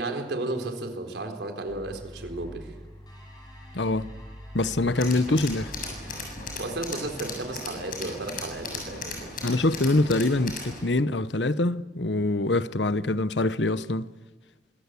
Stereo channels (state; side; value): normal; both; correlation 0.50